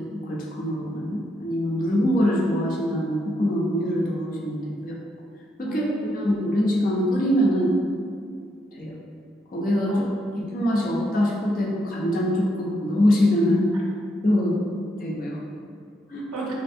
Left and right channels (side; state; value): both; normal; correlation 0.78